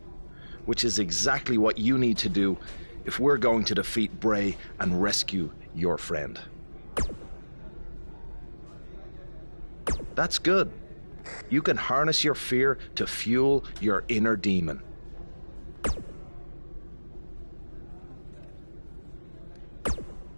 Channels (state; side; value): inverted; both; correlation -1.00